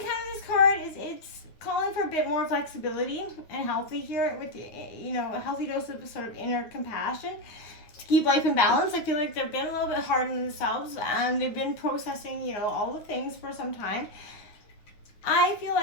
encounter this card, it's calling for a bit more flexibility and healthy here with a healthy dose of sort of inner compassion to keep life in balance. I feel like they've been a little bit hard on themselves and they've been processing, all the things for some time. I feel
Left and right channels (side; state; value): right; late; 9.4 ms